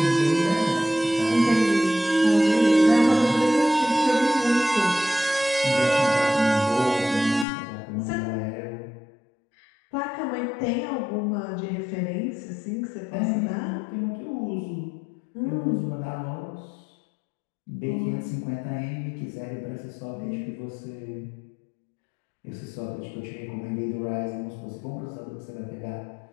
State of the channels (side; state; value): right; drops out; at 7.5 s